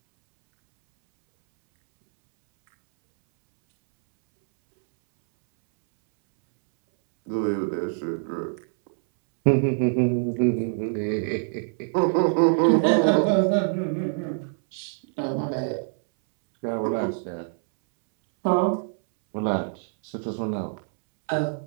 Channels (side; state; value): left; silent; 62 dB below the other